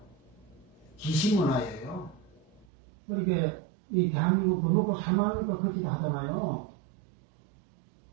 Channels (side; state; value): left; drops out; at 2.7 s